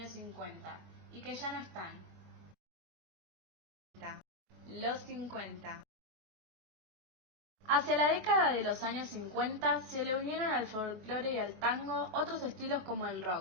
50 y que ya no están. Los 50. Hacia la década de los años 50 se le unieron al folclore y al tango otros estilos como el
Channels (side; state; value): left; late; 23 ms